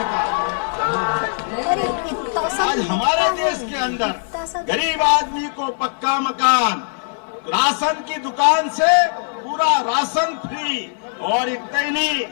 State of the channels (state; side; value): silent; right; digital silence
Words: है। आज हमारे देश के अंदर गरीब आदमी को पक्का मकान, राशन की दुकान से पूरा राशन फ्री, और इतना ही नहीं